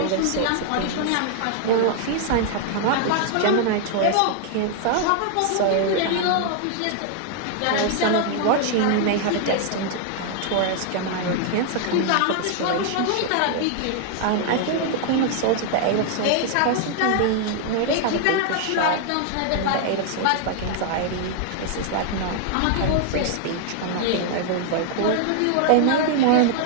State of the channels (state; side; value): different; both; correlation 0.00